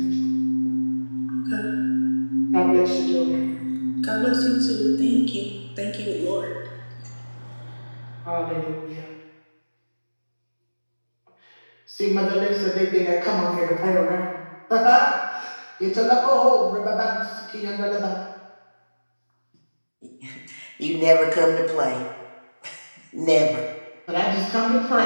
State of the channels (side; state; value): both; inverted; correlation -1.00